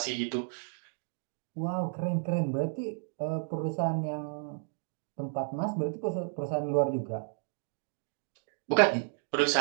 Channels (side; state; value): left; silent; digital silence